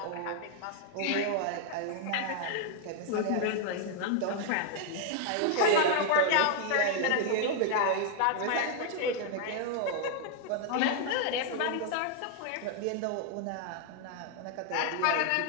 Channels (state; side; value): different; both; correlation 0.00